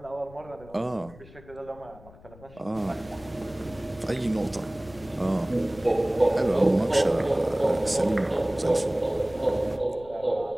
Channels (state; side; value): noise; left; rumble, 21 dB below the sound